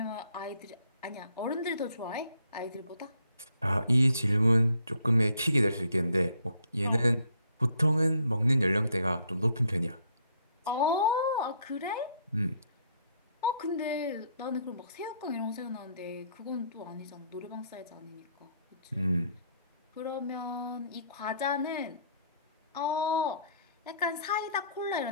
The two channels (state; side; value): inverted; both; correlation -0.66